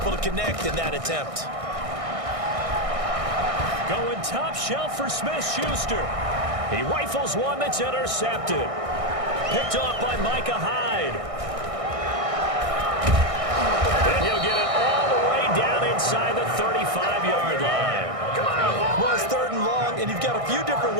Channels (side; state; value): left; late; 1.6 ms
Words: to connect in that attempt. Going top shelf for Smith-Schuster. He rifles one that's intercepted. Picked off by Micah Hyde. And he'll get it all the way down inside the 35-yard line. Well, it's third and long, and you've got a few different